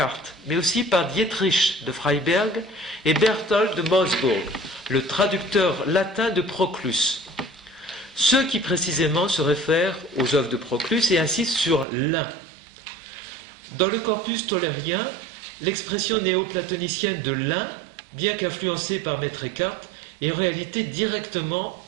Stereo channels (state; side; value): drops out; left; at 11.9 s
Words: mais aussi par Dietrich de Freiberg et Berthold de Moosburg, le traducteur latin de Proclus. Ceux qui précisément se réfèrent aux œuvres de Proclus et insistent sur l'un. Dans le corpus tollérien, l'expression néoplatonicienne de l'un, bien qu'influencée par Maître Eckhart, est en réalité directement